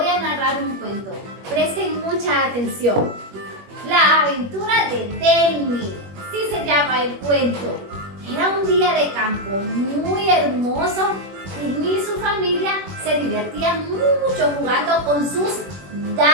a narrar un cuento. Presten mucha atención. La aventura de Delmi, sí se llama el cuento. Era un día de campo muy hermoso. Delmi y su familia se divertían mucho jugando con sus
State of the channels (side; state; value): left; late; 21 ms